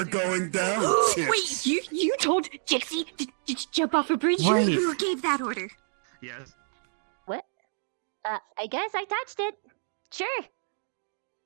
are. going down. Wait, you told Gypsy to jump off a bridge? Wait. Who gave that order? Yes. What? I guess I touched it. Sure.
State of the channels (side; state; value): left; silent; 59 dB below the other